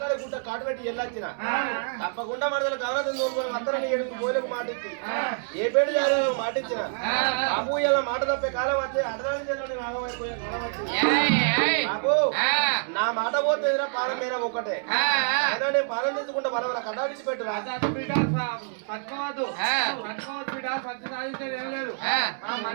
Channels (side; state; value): left; silent; 60 dB below the other